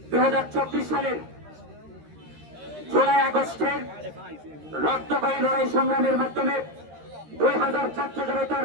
2024 সালের জুলাই আগস্টের রক্তক্ষয়ী লড়াই সংগ্রামের মাধ্যমে 2000 ছাত্র জনতার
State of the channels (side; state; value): left; late; 13 ms